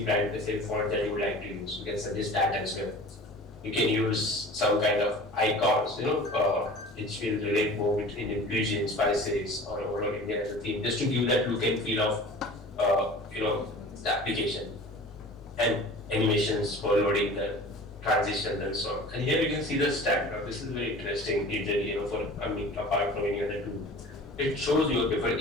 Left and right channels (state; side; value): normal; both; correlation 0.41